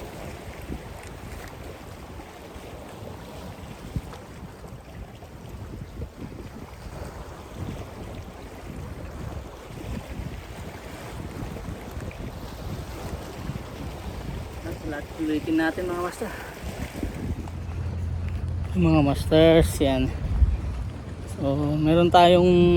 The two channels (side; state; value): both; identical; correlation 1.00